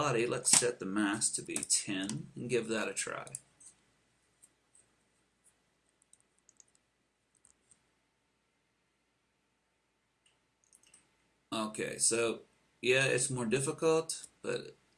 let's set the mass to be 10 and give that a try. Okay, so yeah, it's more difficult, but it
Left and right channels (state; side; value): identical; both; correlation 1.00